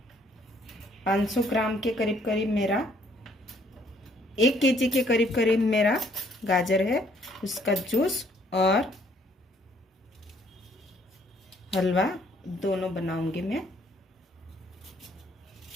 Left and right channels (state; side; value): normal; both; correlation 0.64